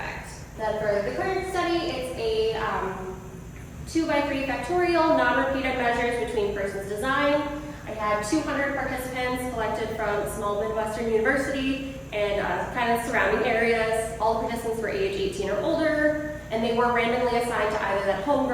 Then for the current study, it's a 2x3 factorial, non-repeated measures between persons design. I had 200 participants collected from small Midwestern university and kind of surrounding areas. All participants were age 18 or older, and they were randomly assigned to either that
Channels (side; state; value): both; identical; correlation 1.00